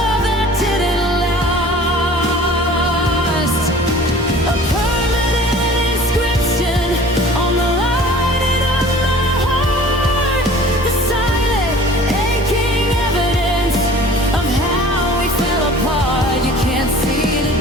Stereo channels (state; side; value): normal; both; correlation 0.46